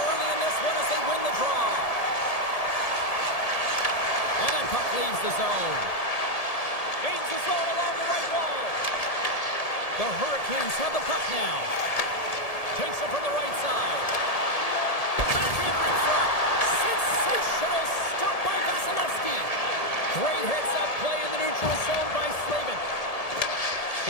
in this one as they win the draw. And that puck leaves the zone. Gains the zone along the right wall. The Hurricanes have the puck now. Takes it from the right side. Backhander in front. Sensational stop by Vasilevsky. Great heads-up play in the neutral zone by Slavin.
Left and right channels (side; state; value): right; late; 1.7 ms